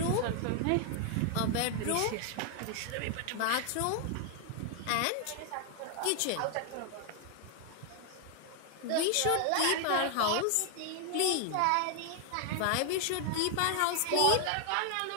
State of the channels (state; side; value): different; both; correlation 0.00